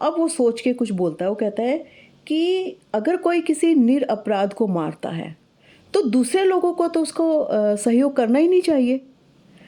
वो सोच के कुछ बोलता है, वो कहता है कि अगर कोई किसी निरपराध को मारता है तो दूसरे लोगों को तो उसको सहयोग करना ही नहीं चाहिए।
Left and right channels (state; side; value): identical; both; correlation 1.00